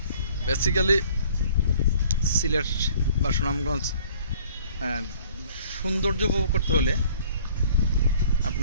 বেসিক্যালি সিলেট বা সুনামগঞ্জ সৌন্দর্য উপভোগ করতে হলে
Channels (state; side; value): inverted; both; correlation -0.55